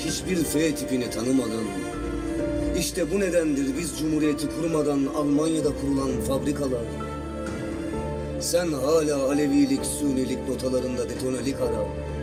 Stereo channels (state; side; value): identical; both; correlation 1.00